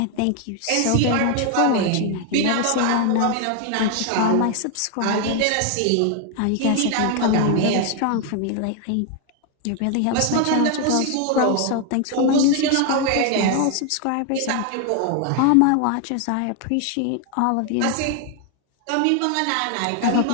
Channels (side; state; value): both; different; correlation 0.01